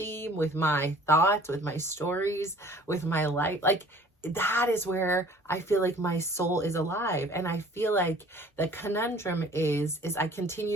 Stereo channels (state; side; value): normal; both; correlation 0.51